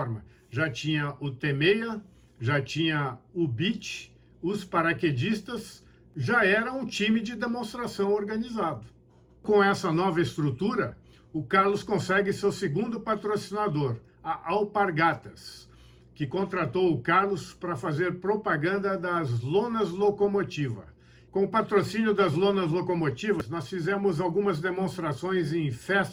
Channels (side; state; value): both; identical; correlation 1.00